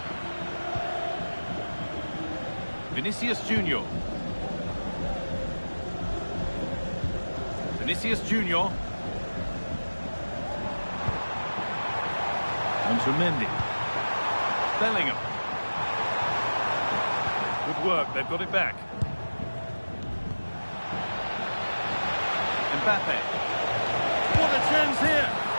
Vinicius Junior. Vinicius Junior. On to Mendy. Bellingham. Good work, they've got it back. Mbappe. What a chance here.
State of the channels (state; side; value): inverted; both; correlation -1.00